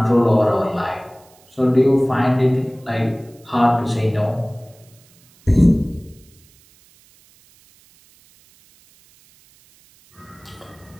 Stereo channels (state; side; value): noise; right; hiss, 30 dB below the sound